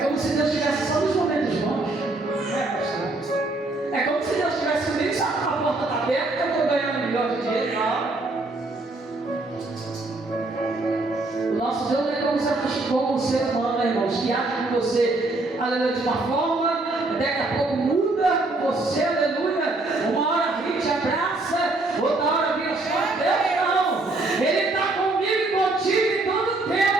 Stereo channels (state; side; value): quieter; left; 3.0 dB